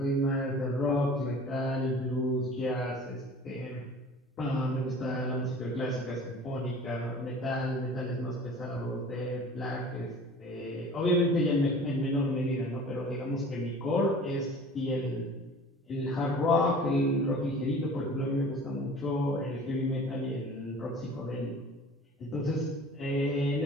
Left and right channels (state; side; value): normal; both; correlation 0.44